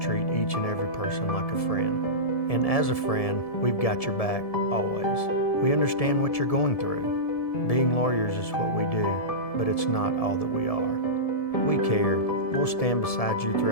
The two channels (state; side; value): late; right; 1.7 ms